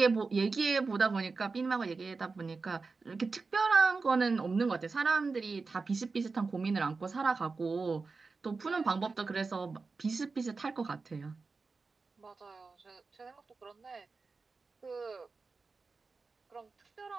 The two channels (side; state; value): left; quieter; 4.3 dB